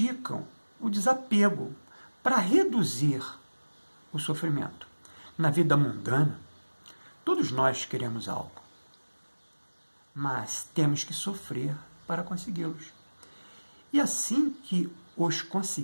o desapego para reduzir o sofrimento. Na vida mundana, todos nós queremos algo. mas temos que sofrer para consegui-los. E assim que os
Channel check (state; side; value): inverted; both; correlation -1.00